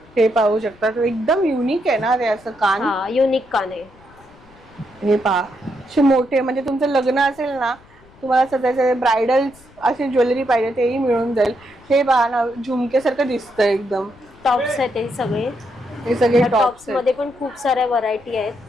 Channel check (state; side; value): noise; left; rumble, 26 dB below the sound